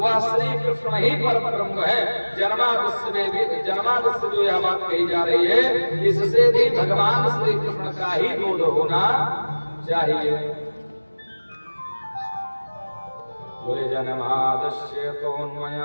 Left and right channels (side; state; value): both; inverted; correlation -1.00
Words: श्री कृष्ण ही परम ब्रह्म है। जन्मादस्य में भी, जन्मादस्य जो यह बात कही जा रही है, इससे भी भगवान श्री कृष्ण का ही बोध होना चाहिए। बोले जन्मादस्य